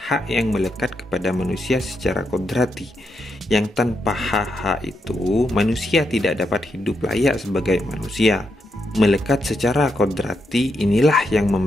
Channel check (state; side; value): normal; both; correlation 0.82